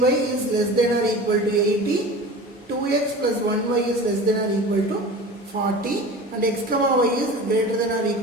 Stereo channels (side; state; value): both; normal; correlation 0.36